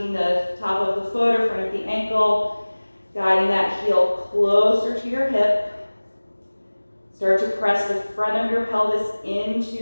the top of the foot or front of the ankle, guiding that heel closer to your hip. Start to press the front of your pelvis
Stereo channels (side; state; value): both; inverted; correlation -1.00